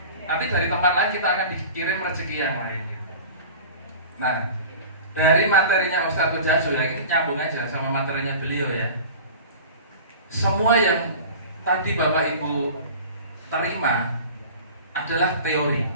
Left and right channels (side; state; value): both; inverted; correlation -0.38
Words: Nanti dari tempat lain kita akan dikirim rezeki yang lain. Nah, dari materinya Ustadz Jasu ya, ini nyambung aja sama materinya beliau ya. Semua yang tadi Bapak Ibu terima adalah teori.